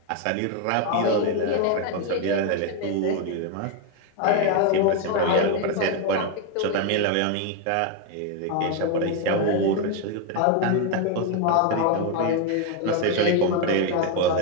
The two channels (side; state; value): both; different; correlation 0.01